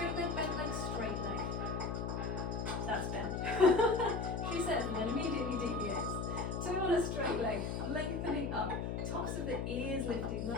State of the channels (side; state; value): left; noise; hum, 2 dB below the sound